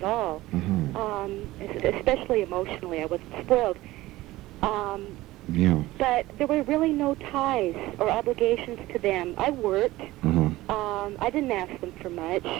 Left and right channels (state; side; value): quieter; left; 17.7 dB